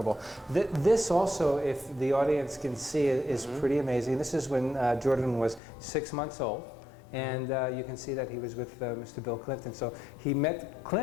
This also, if the audience can see it, is pretty amazing. This is when Jordan was 6 months old, and you can see that he was with Mr. Bill Clinton. So he met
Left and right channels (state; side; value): drops out; right; at 5.6 s